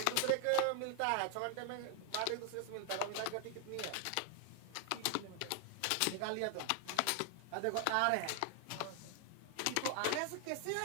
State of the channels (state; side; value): different; both; correlation 0.00